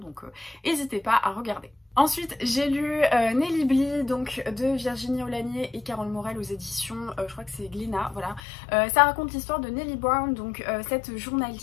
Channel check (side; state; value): right; drops out; at 8.4 s